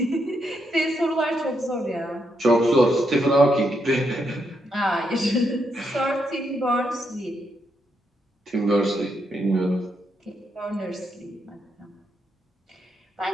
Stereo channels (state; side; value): normal; both; correlation 0.79